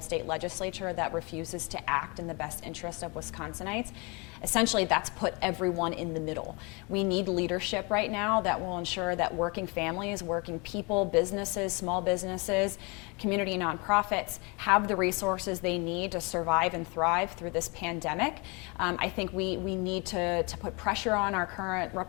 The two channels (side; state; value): right; quieter; 29.5 dB